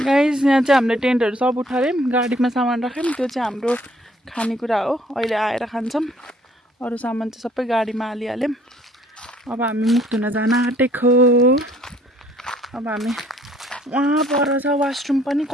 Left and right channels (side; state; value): both; normal; correlation 0.60